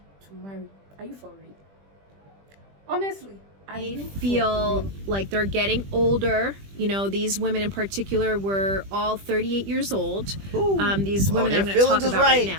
to marry. Are you for real? Honestly, I feel like they're getting older. You know, these women in particular were all 38 years old. These women that I'm going to talk about right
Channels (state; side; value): late; left; 20 ms